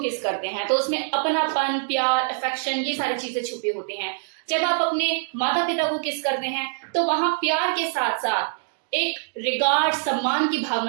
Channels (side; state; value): left; silent; digital silence